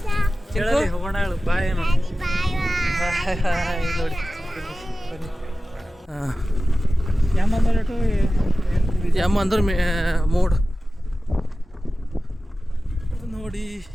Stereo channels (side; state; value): both; normal; correlation 0.95